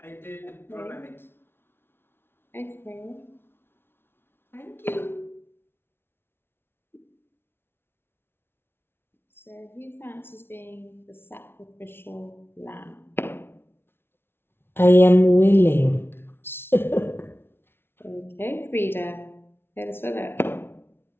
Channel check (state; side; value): late; right; 0.11 ms